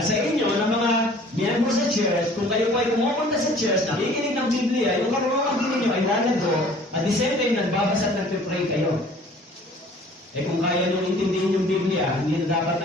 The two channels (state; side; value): normal; both; correlation 0.51